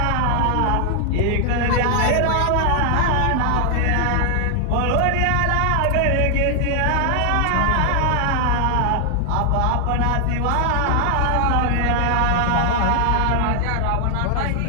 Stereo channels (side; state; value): both; different; correlation 0.00